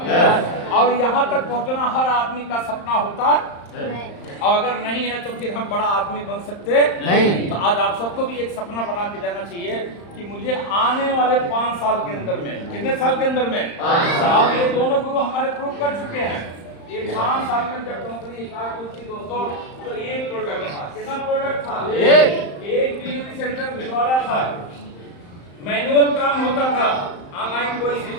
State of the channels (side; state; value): right; late; 35 ms